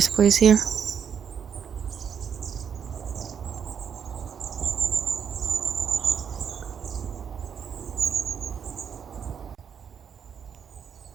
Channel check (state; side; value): quieter; left; 7.5 dB